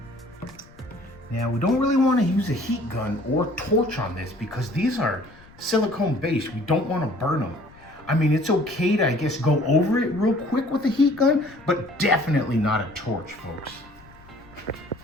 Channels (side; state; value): left; noise; rumble, 24 dB below the sound